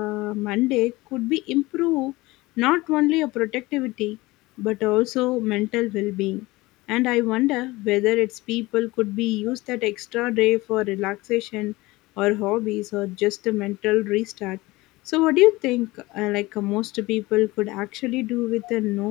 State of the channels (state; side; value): quieter; right; 20.7 dB